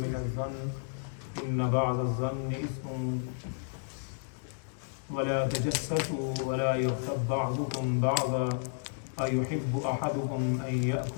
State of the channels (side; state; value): right; silent; 56 dB below the other